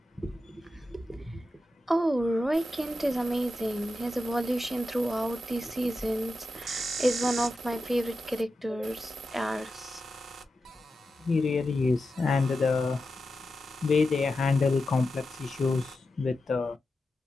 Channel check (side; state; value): both; normal; correlation 0.90